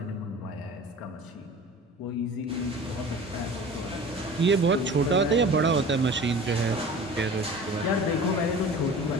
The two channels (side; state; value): both; normal; correlation 0.40